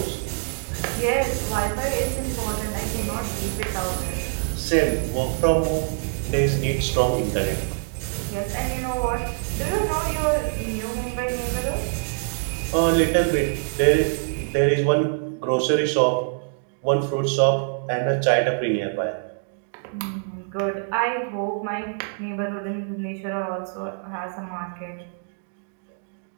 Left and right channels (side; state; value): left; silent; digital silence